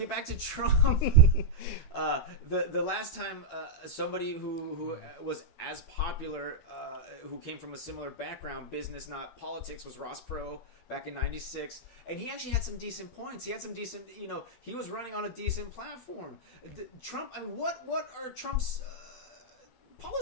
back to Trump, the last time somebody who was as popular, who came from a similar background, business not politics, was Ross Perot back in '96, and he actually had some decent points. He had some decent, he was running on a decent platform. Trump, I mean, what are Trump's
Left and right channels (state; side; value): late; right; 12 ms